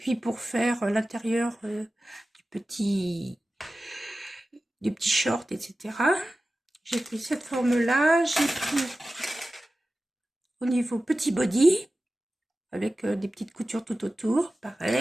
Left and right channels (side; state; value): both; normal; correlation 0.95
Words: pour faire l'intérieur du petit short, etc. J'ai pris cette forme-là. J'ai pris au niveau petit body, avec des petites coutures tout autour,